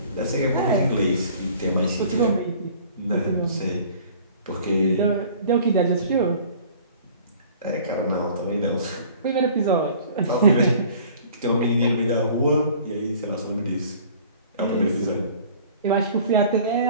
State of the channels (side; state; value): both; inverted; correlation -0.49